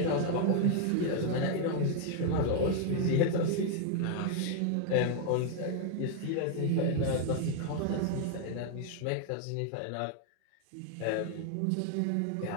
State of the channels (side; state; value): both; different; correlation 0.01